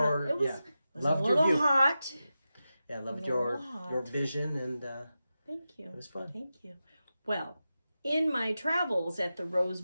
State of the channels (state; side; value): inverted; both; correlation -0.92